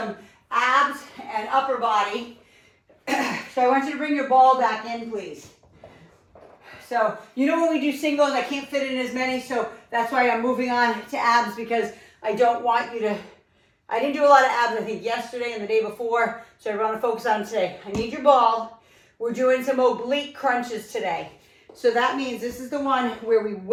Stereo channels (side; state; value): both; identical; correlation 1.00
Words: abs and upper body. So I want you to bring your ball back in, please. So, you know when we do singles, I can't fit in as many, so that's why I'm moving on to abs, because I don't want you to, I didn't do a lot of abs, I think, yesterday and the day before, so I want to focus on today. I need your ball. We're doing some oblique crunches today. So that means this is the one where we